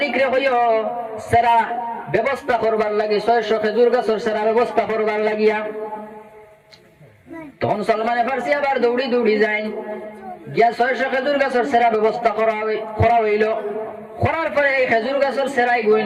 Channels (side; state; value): both; identical; correlation 1.00